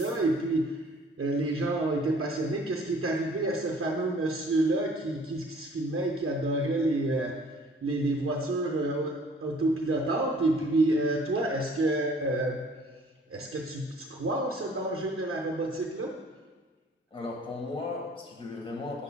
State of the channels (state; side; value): normal; both; correlation 0.54